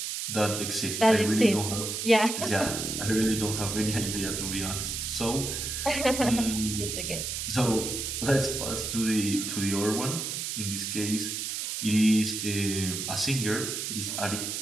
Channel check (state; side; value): noise; right; hiss, 3 dB below the sound